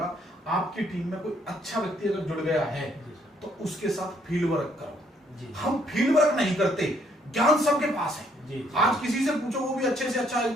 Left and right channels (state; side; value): normal; both; correlation 0.68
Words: आपकी टीम में कोई अच्छा व्यक्ति अगर जुड़ गया है तो उसके साथ फील्ड वर्क करो। हम फील्ड वर्क नहीं करते, ज्ञान सबके पास है। आज किसी से पूछो, वो भी अच्छे से अच्छा